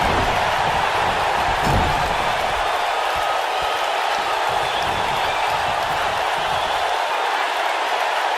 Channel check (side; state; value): both; identical; correlation 1.00